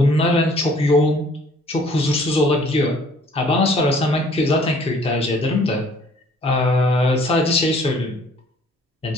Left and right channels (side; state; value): both; normal; correlation 0.57